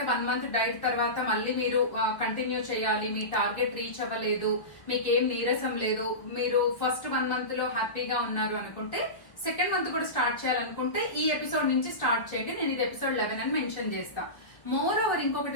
1 మంత్ డైట్ తర్వాత మళ్ళీ మీరు కంటిన్యూ చేయాలి, మీ టార్గెట్ రీచ్ అవ్వలేదు, మీకేం నీరసం లేదు, మీరు ఫస్ట్ 1 మంత్ లో హ్యాపీగా ఉన్నారు అనుకుంటే సెకండ్ మంత్ కూడా స్టార్ట్ చేయాలనుకుంటే ఈ ఎపిసోడ్ నుంచి స్టార్ట్ చేయండి. నేను ఇది ఎపిసోడ్ 11 అని మెన్షన్ చేస్తా. మోర్ ఓవర్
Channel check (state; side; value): late; right; 1.2 ms